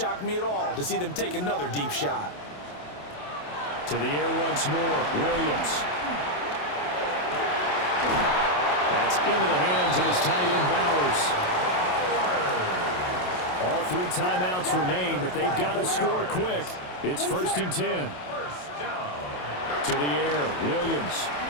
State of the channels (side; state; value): right; late; 27 ms